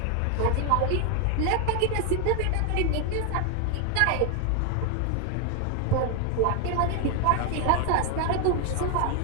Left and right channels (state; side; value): different; both; correlation 0.01